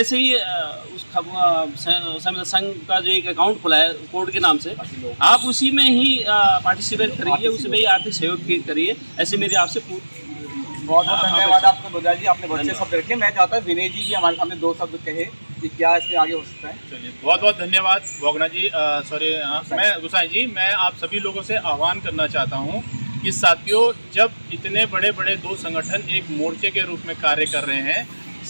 से ही उस संविदा संघ का जो एक अकाउंट खुला है कोर्ट के नाम से, आप उसी में ही पार्टिसिपेट करिए, उसी में ही आर्थिक सहयोग करिए। ऐसे मेरी आपसे बहुत बहुत धन्यवाद आपको गोरियाल जी, आपने बहुत अच्छे शब्द रखे। मैं चाहता हूँ विनय जी भी हमारे सामने 2 शब्द कहे कि क्या इसमें आगे हो सकता है। चलिए, बहुत बहुत धन्यवाद भोगना जी, मैं गुसाई जी, मैं आप सभी लोगों से आह्वान करना चाहता हूँ कि साथियों, जब इतने बड़े बड़े 2 संगठन एक मोर्चे के रूप में कार्य कर रहे हैं,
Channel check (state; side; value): inverted; both; correlation -1.00